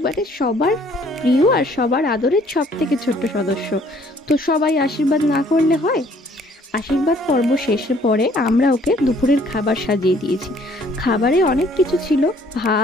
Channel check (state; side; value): normal; both; correlation 0.60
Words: সবার প্রিয় আর সবার আদরের সব থেকে ছোট্ট সদস্য, তো সবাই আশীর্বাদ না করলে হয়? আশীর্বাদ পর্ব শেষের পরে আমরা ওকে দুপুরের খাবার সাজিয়ে দিয়েছি। খাবারে অনেক কিছু ছিল,